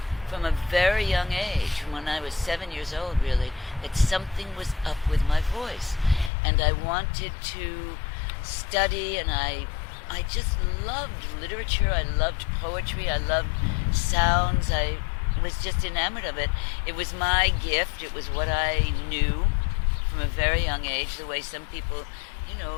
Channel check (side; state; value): right; drops out; at 6.3 s